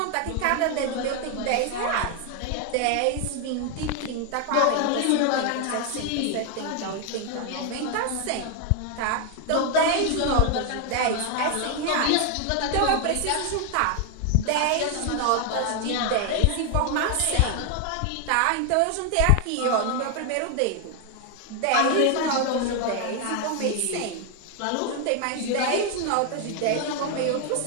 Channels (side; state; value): both; different; correlation 0.01